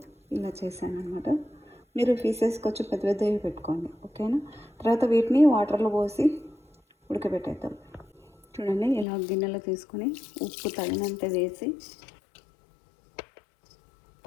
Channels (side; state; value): right; drops out; at 9.1 s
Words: ఇలా చేశాను అనమాట. మీరు పీసెస్కి వచ్చి పెద్ద పెద్దవి పెట్టుకోండి, ఓకేనా. తర్వాత వీటిని వాటర్లో పోసి ఉడకబెట్టేద్దాం. చూడండి, ఇలా గిన్నెలో తీసుకొని ఉప్పు తగినంత వేసి